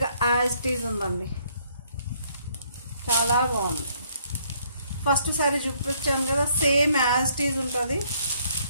యాజ్ ఇట్ ఈజ్ ఉందండి. చాలా బాగుంది. ఫస్ట్ సారీ చూపించాను కదా, సేమ్ యాజ్ ఇట్ ఈజ్ ఉంటుంది.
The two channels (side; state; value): both; inverted; correlation -0.67